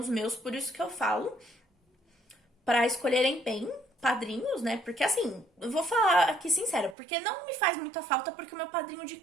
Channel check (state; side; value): drops out; left; at 7.0 s